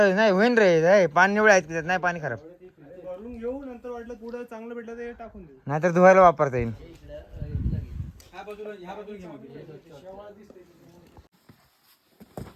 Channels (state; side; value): identical; both; correlation 1.00